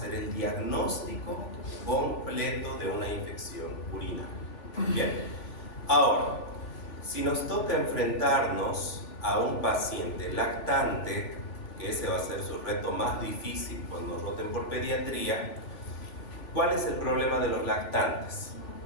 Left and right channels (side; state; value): right; late; 3.5 ms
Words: el diagnóstico completo de una infección urinaria. Bien. Ahora, si nos toca enfrentarnos a un paciente lactante, que ese va a ser su reto más difícil cuando nos roten por pediatría, ¿cuál es el problema de los lactantes?